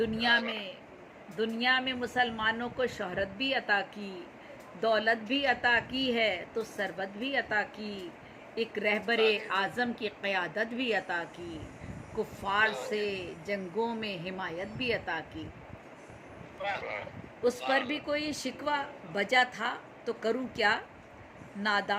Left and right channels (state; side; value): identical; both; correlation 1.00